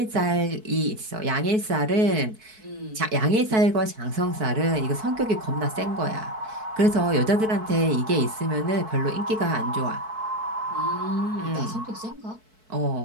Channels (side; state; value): left; late; 4.6 ms